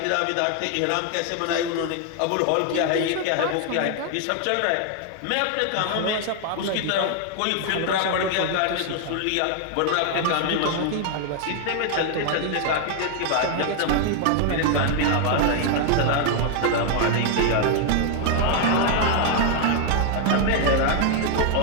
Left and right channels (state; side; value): different; both; correlation 0.00